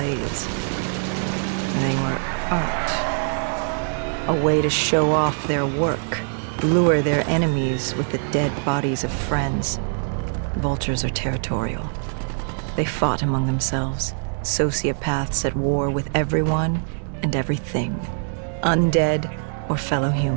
They were art. A way to show off their work, lure their enemies with the dead bodies of friends. Vultures are territorial. They fought among themselves, sociopaths at war with everyone and everything. Undead or fellow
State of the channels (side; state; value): left; silent; 63 dB below the other